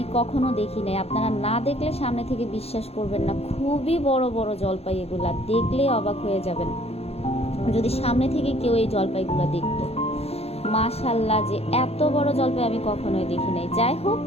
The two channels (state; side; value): late; right; 0.29 ms